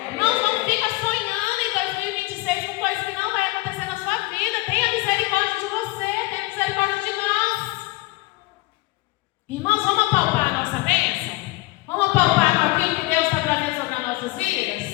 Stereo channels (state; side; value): quieter; right; 21.6 dB